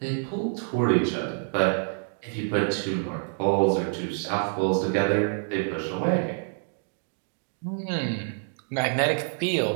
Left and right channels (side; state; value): left; silent; 60 dB below the other